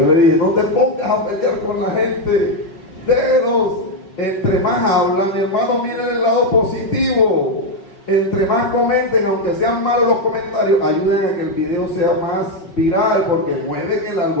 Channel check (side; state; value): right; late; 5.3 ms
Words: le dije, no te pongas a pelear con la gente. Déjelos. Entre más hablan, hermano, miren el lado positivo. Entre más comenten, aunque sean malos los comentarios, ayuden a que el video sea más viral, porque mueven el